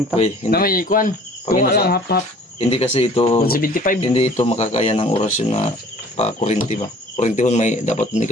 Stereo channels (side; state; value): both; normal; correlation 0.51